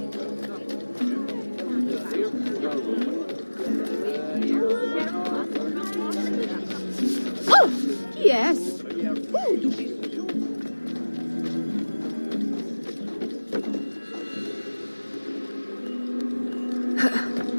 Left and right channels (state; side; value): inverted; both; correlation -1.00